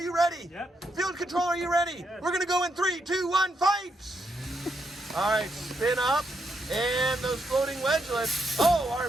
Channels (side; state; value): both; normal; correlation 0.80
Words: ready? Yep. Field control, are you ready? Yes. We're gonna go in 3, 2, 1, fight! All right, spin up, and those floating wedgelets,